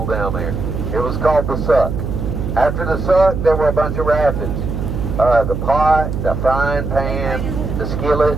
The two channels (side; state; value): right; noise; hum, 4 dB below the sound